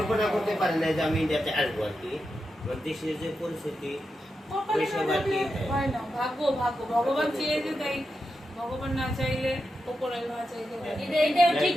ব্যাপার। করতে পারি না যে আমি ইন্ডিয়াতে আসবো আর কি আমার দেশের যে পরিস্থিতি কপালে ওইসব না আর কি থাকলে হয় না ভাগ্য ভাগ্য ভগবান চেয়েছে তাই ভগবান না চাইলে ওপরে না চাইলে এটাও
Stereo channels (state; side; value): normal; both; correlation 0.88